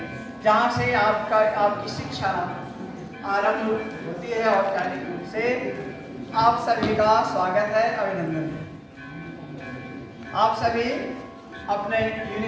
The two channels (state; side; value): identical; both; correlation 1.00